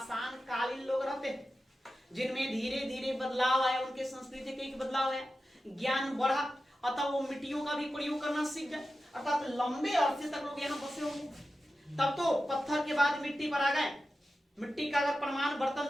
लोग रहते हैं, जिनमें धीरे धीरे बदलाव आया, उनके संस्कृति के बदलाव आया, ज्ञान बढ़ा, अतः वो मिट्टियों का भी प्रयोग करना सीख गए। अर्थात लंबे अरसे तक लोग यहाँ बसे होंगे। तब तो पत्थर के बाद मिट्टी पर आ गए। मिट्टी का अगर प्रमाण बर्तन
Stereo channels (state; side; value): normal; both; correlation 0.92